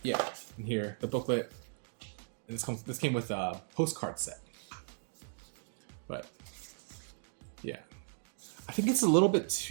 yeah, in here the booklet. And this came with a postcard set. But yeah, I think it's a little bit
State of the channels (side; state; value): left; silent; digital silence